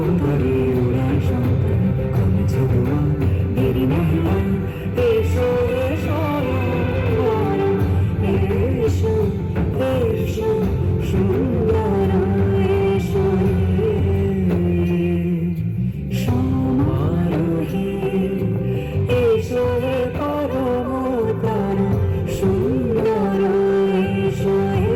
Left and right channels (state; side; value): identical; both; correlation 1.00